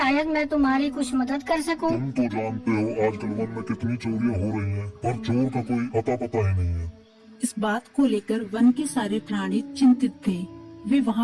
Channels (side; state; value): both; identical; correlation 1.00